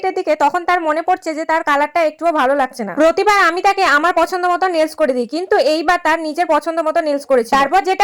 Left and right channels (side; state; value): both; identical; correlation 1.00